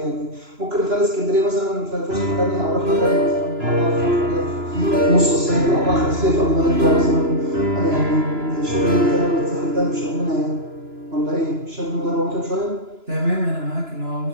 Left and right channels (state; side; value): late; left; 2.9 ms